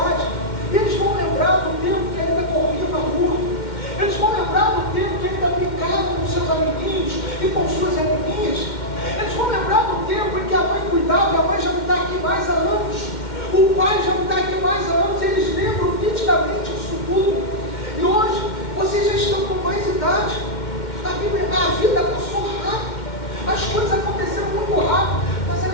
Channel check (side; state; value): right; late; 2.1 ms